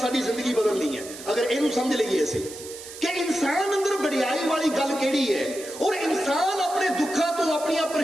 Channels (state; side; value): noise; right; hiss, 14 dB below the sound